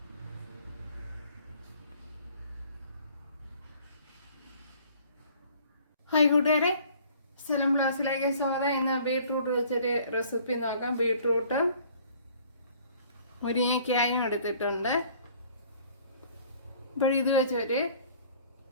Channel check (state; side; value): inverted; both; correlation -0.54